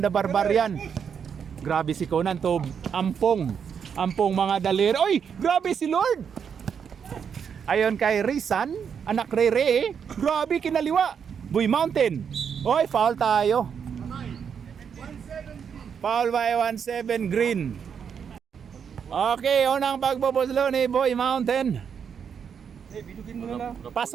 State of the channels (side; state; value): left; quieter; 7.2 dB